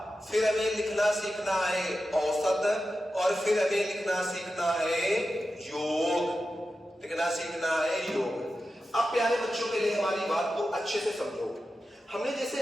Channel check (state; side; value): normal; both; correlation 0.92